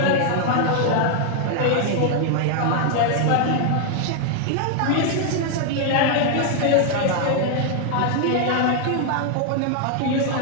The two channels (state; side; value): different; both; correlation 0.00